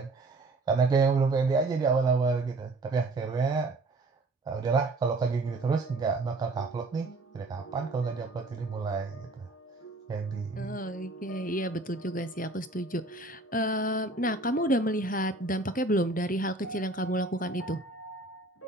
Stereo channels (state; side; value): quieter; left; 3.0 dB